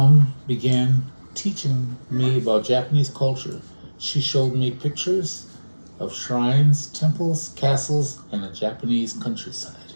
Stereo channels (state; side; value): inverted; both; correlation -1.00